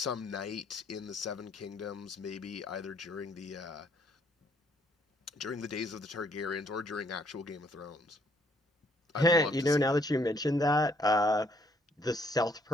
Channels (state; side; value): normal; both; correlation 0.67